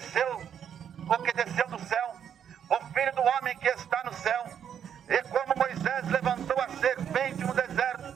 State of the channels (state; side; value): quieter; left; 8.7 dB